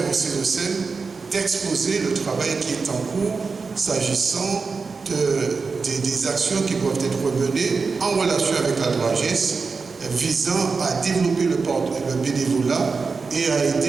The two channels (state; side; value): quieter; left; 4.7 dB